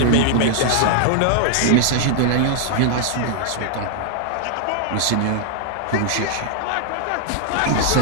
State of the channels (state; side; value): different; both; correlation -0.01